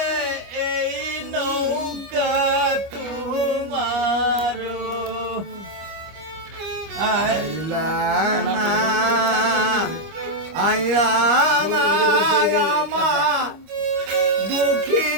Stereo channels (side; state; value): left; late; 25 ms